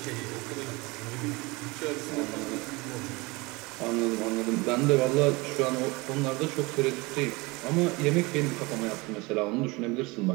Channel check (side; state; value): left; quieter; 24.6 dB